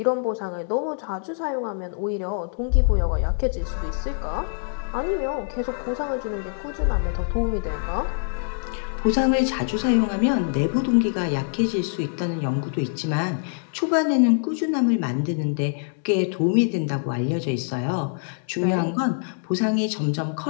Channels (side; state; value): right; silent; digital silence